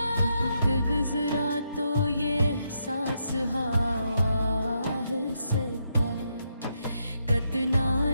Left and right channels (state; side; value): inverted; both; correlation -0.80